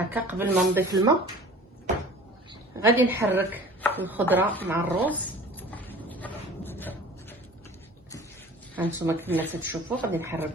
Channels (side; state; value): both; normal; correlation 0.44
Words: قبل ما نضيف الماء. غادي نحرك الخضره مع الروز. هانتوما كما تشوفوا غادي نحرك